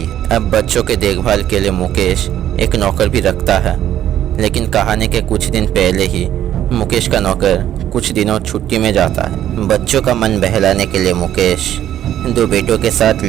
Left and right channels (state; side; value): quieter; left; 11.5 dB